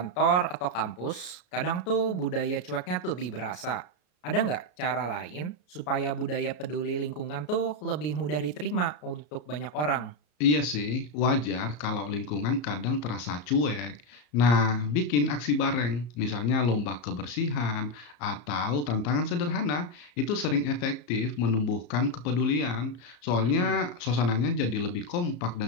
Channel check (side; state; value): right; late; 33 ms